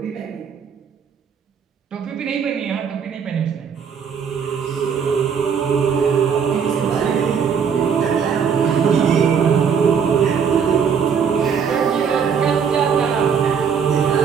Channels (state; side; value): quieter; left; 6.8 dB